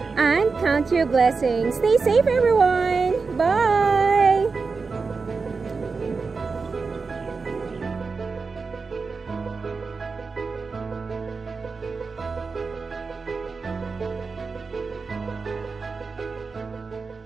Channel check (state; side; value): quieter; left; 4.6 dB